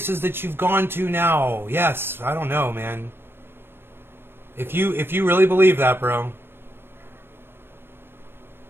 that you've gone to now. Yes, I don't know, man. If you really believe that, bro.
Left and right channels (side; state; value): left; late; 0.11 ms